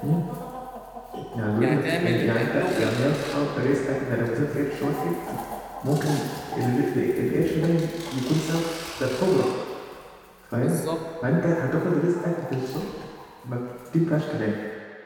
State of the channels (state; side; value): identical; both; correlation 1.00